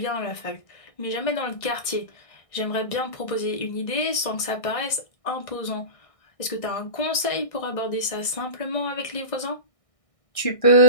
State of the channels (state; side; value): late; right; 1.6 ms